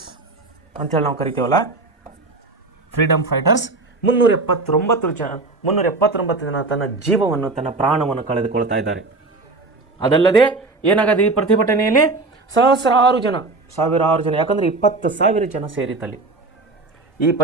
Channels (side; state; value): left; quieter; 3.4 dB